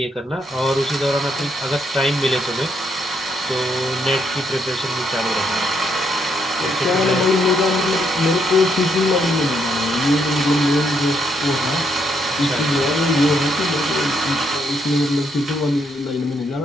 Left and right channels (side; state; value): both; normal; correlation 0.75